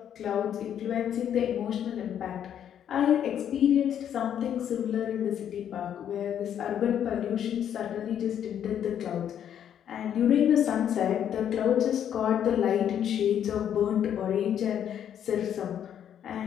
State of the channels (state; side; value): quieter; right; 9.5 dB